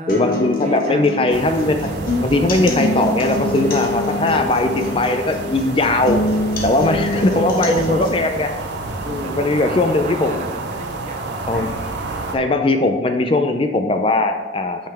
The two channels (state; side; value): normal; both; correlation 0.40